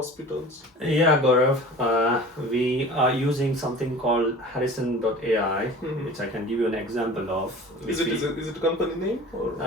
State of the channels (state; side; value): normal; both; correlation 0.41